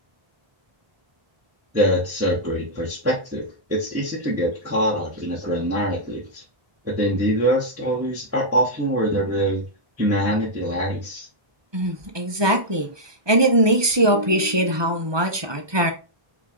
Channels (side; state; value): left; late; 1.2 ms